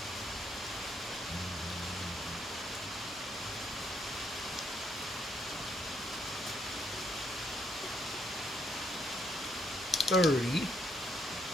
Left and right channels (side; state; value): both; normal; correlation 0.73